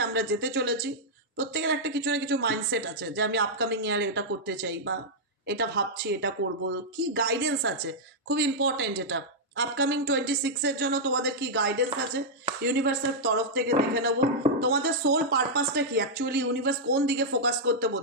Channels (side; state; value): both; normal; correlation -0.06